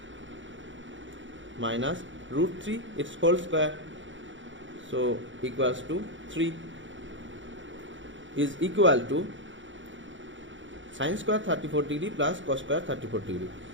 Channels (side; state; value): left; late; 0.55 ms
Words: minus root 3 its whole square, so equals to 3 is equal to sin square 34 degree plus cos square 34 degree